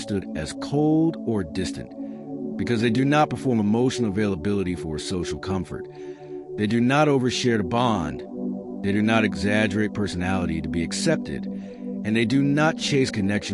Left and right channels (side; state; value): both; identical; correlation 1.00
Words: as cold or distant, because they do not perform emotional availability for social comfort. They do not overshare to bond. They do not exaggerate personality to be accepted. And they do not chase